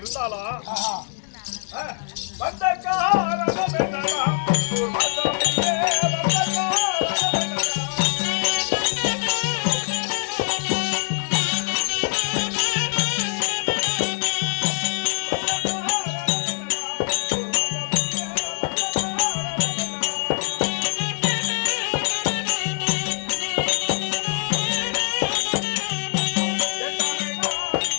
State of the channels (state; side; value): silent; right; digital silence